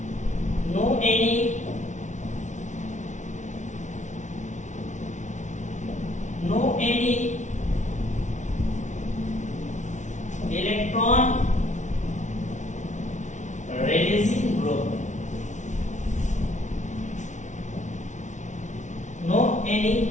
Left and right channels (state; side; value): late; right; 0.35 ms